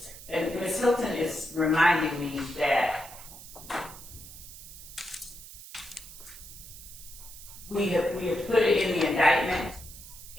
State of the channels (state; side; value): noise; right; hiss, 15 dB below the sound